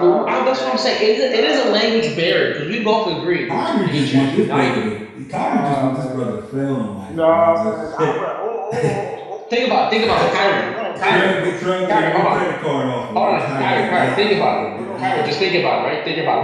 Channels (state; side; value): identical; both; correlation 1.00